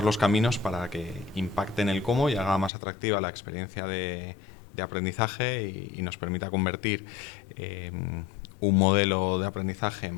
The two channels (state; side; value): drops out; right; at 2.7 s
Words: los caminos para que impacten el cómo y haga más atractiva la experiencia de aprendizaje y nos permita convertir un modelo de aprendizaje